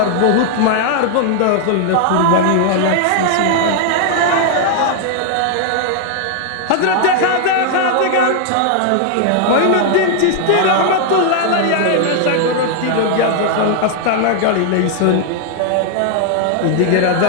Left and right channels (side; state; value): both; different; correlation 0.00